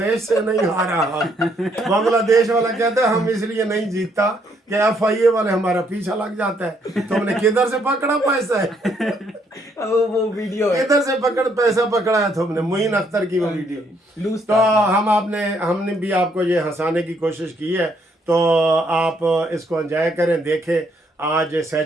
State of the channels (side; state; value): both; normal; correlation 0.70